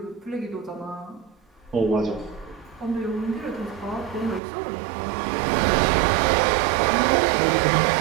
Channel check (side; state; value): left; drops out; at 4.4 s